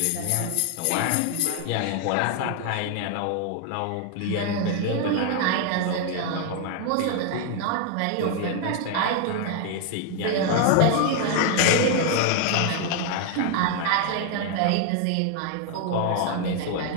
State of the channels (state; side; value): different; both; correlation 0.01